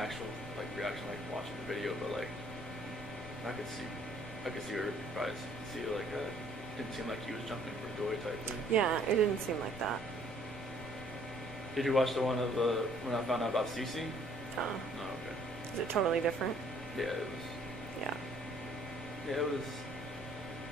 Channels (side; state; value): both; normal; correlation 0.60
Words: actual like reaction, like watching the video, but like I could see her probably see like didn't seem like he was jumping for joy type thing. yeah, it didn't seem like that. Did you watch the one of when I found out about Cece? Oh, okay. is it totally different? Yeah, it was. Yeah. Yeah, it was.